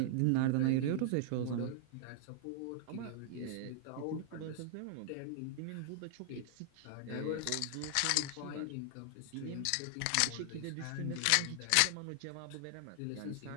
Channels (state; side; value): different; both; correlation 0.00